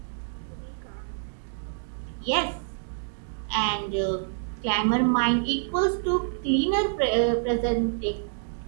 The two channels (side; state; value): left; silent; digital silence